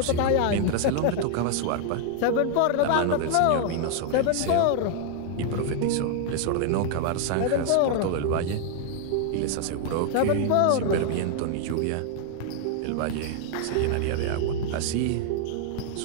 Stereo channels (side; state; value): both; different; correlation 0.00